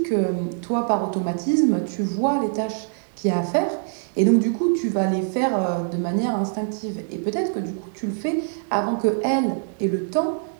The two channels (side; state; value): left; silent; 63 dB below the other